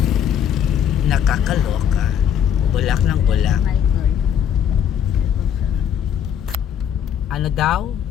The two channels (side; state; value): right; quieter; 8.9 dB